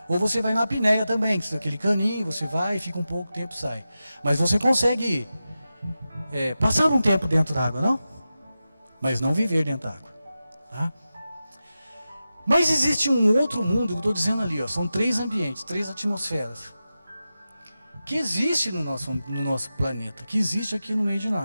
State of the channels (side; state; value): both; inverted; correlation -0.93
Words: Ou você vai na apneia também, que é aquele caninho, você vai, fica um pouco, tempo sai. Mas você consegue passar um tempo dentro da água, não? Mas não viver dentro da água, tá? Mas existe um outro mundo, que eu estou dizendo ali, ó, são 3 ambientes, 3 atmosferas, que existe no nosso planeta, que existe aqui no meio de